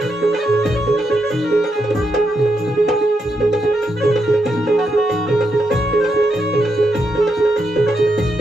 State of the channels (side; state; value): both; normal; correlation 0.82